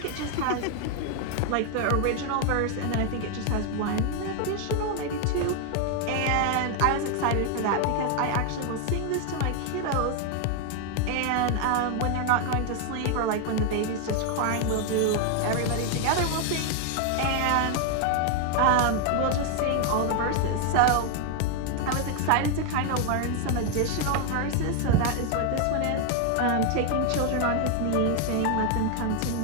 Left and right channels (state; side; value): different; both; correlation 0.01